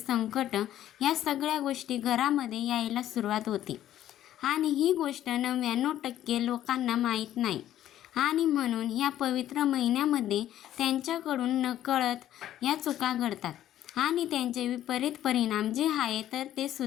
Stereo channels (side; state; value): right; quieter; 12.2 dB